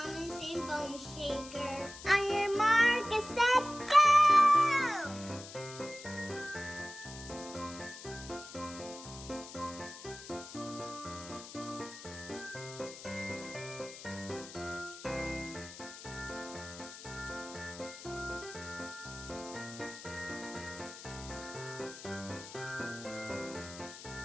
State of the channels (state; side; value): noise; left; hiss, 13 dB below the sound